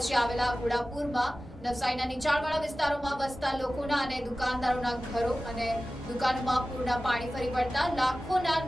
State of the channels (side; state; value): both; normal; correlation 0.96